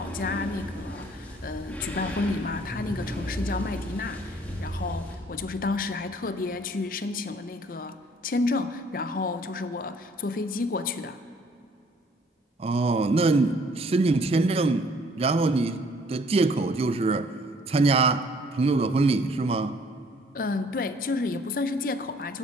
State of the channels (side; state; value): both; normal; correlation 0.59